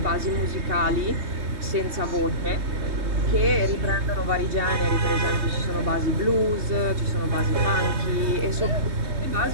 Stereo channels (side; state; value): left; late; 3.2 ms